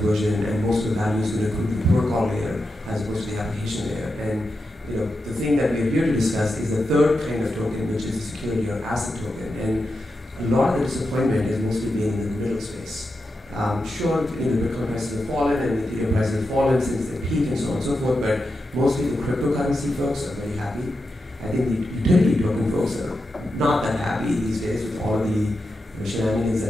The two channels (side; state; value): both; normal; correlation 0.88